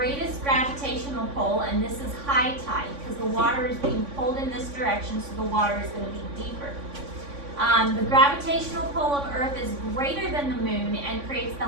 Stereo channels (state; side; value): late; left; 3.5 ms